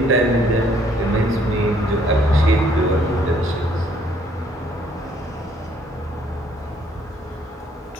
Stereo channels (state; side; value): normal; both; correlation 0.64